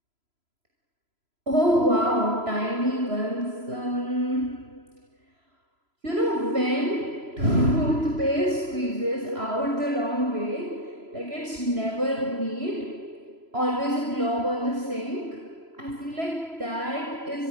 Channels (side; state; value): left; late; 3.0 ms